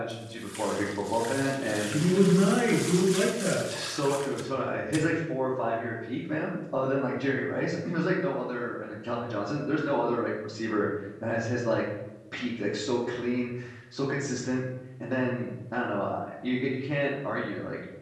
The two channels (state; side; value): identical; both; correlation 1.00